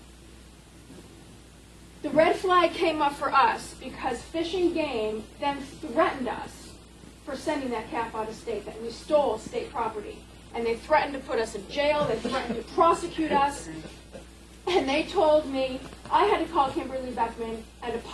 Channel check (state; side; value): identical; both; correlation 1.00